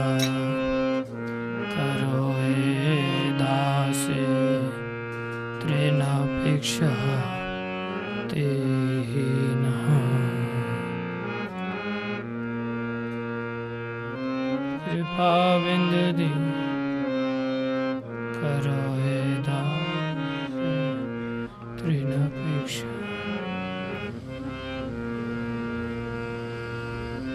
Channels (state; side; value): identical; both; correlation 1.00